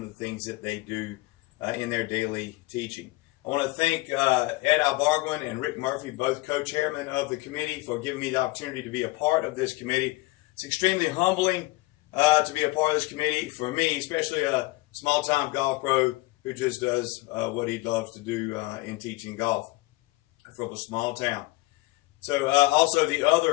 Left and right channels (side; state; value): right; quieter; 21.2 dB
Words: the things that they do in their daily teaching. I want to thank Ed Albarguin and Rick Murphy, both co-chairmen of the committee, for giving me the opportunity to be a part of this committee. It's extremely humbling to be a part of this committee for me, especially a small-time golf pro who just does what he loves to do in teaching golf from a small town. So also the